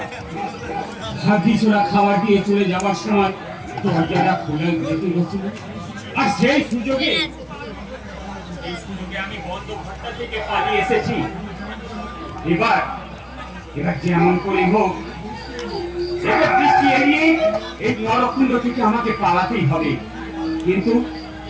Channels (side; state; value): both; identical; correlation 1.00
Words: ভাগ্যি ছোড়া খাবার দিয়ে চলে যাওয়ার সময় দরজাটা খুলে যেতে হচ্ছিল, আর সেই সুযোগে আমি বন্ধ ঘরটা থেকে পালিয়ে এসেছি। এবার এবার যেমন করে হোক দৃষ্টি এড়িয়ে এই নরকুণ্ড থেকে আমাকে পালাতেই হবে। কিন্তু